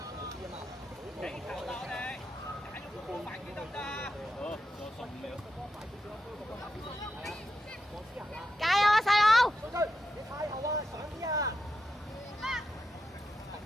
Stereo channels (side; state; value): both; normal; correlation 0.87